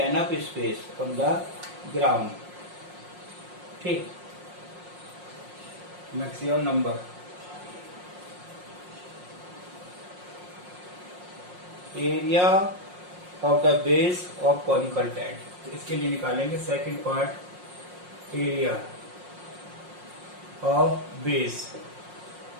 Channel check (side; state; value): left; late; 5.6 ms